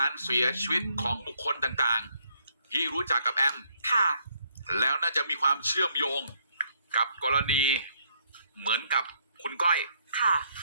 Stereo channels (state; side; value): inverted; both; correlation -0.70